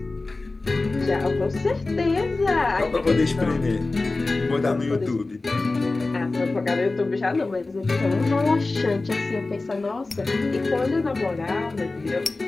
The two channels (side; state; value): right; quieter; 3.3 dB